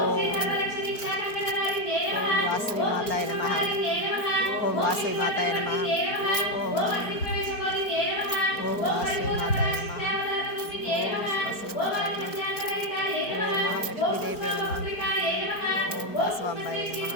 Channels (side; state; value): right; late; 4.3 ms